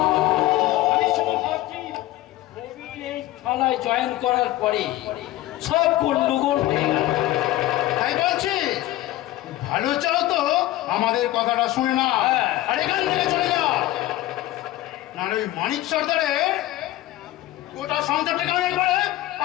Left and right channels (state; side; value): quieter; right; 15.7 dB